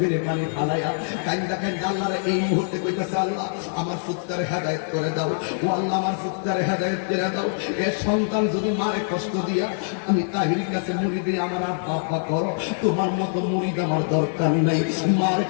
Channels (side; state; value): right; silent; digital silence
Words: পানি ফালাইয়া কান্দা কান্দা আল্লাহরে এই মুহূর্তে কইতেছে, আল্লাহ আমার পুত্ররে হেদায়েত করে দাও, ও আল্লাহ আমার পুত্ররে হেদায়েত করে দাও। এ সন্তান যদি মারে কষ্ট দিয়া আমি তাহিরির কাছে মুড়ি দিয়ে আমার আব্বা করো, তোমার মতো মুড়িদ আমার দরকার নাই। মারে